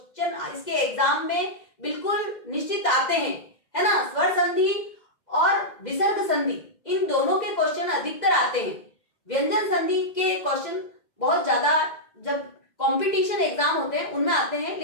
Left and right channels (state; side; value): late; right; 2.0 ms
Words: इसके एग्जाम में बिल्कुल निश्चित आते हैं, है ना, स्वर संधि और विसर्ग संधि, इन दोनों के क्वेश्चन अधिकतर आते हैं। व्यंजन संधि के क्वेश्चन बहुत ज्यादा जब कंपटीशन एग्जाम होते हैं उनमें आते हैं,